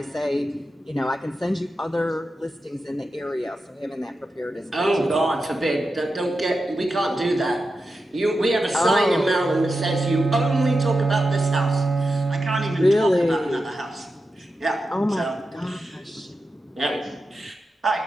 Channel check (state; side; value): normal; both; correlation 0.90